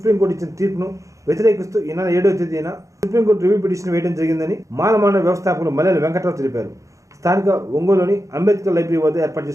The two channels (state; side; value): late; left; 0.15 ms